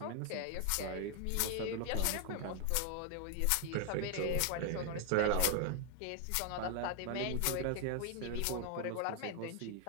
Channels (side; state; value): both; different; correlation 0.00